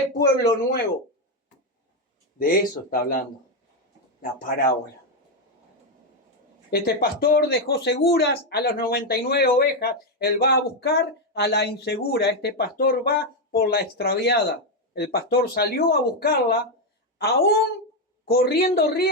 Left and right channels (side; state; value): both; normal; correlation 0.05